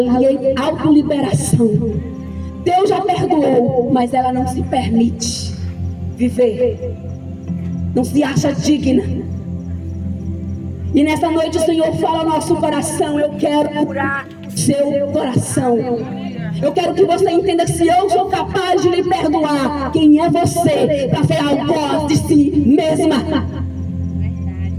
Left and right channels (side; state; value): both; identical; correlation 1.00